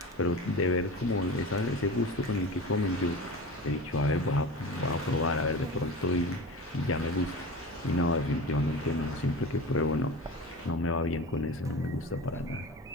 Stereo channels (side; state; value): both; normal; correlation 0.32